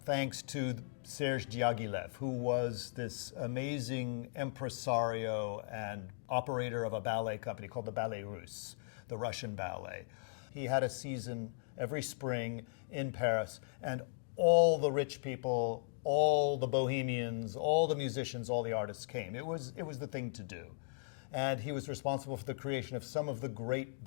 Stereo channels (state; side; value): silent; right; digital silence